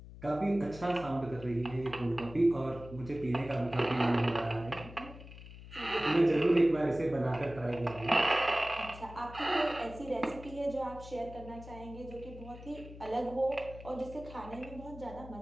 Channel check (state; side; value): noise; left; hum, 15 dB below the sound